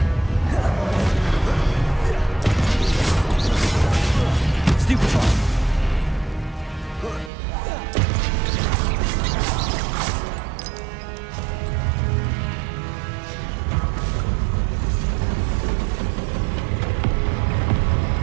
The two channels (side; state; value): left; drops out; at 7.3 s